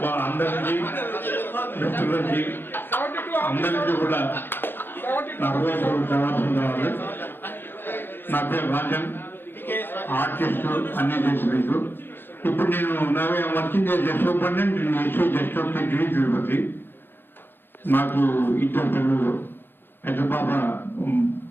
మా అందరికీ మిత్రులకి అందరికీ కూడా నా హృదయపూర్వక జవాబు కావాలి. నా పేరు రాజన్, ఆర్టిస్ట్, అన్ని చేసి ఇప్పుడు నేను working superintendent just of Tirupati. నాకు 2 పిల్లలు. పెద్ద పాప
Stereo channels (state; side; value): late; right; 0.10 ms